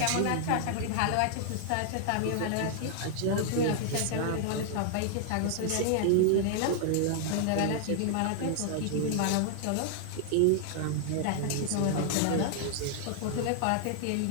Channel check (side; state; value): both; different; correlation -0.01